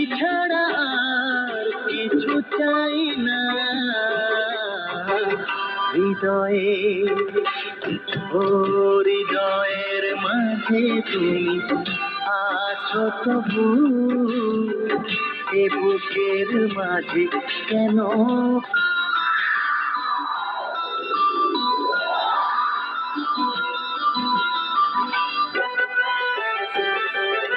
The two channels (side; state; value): both; identical; correlation 1.00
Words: ছাড়া আর কিছু চাই না। হৃদয়ে, ও হৃদয়ের মাঝে তুমি আছো তবু, এ বুকের মাঝে কেন।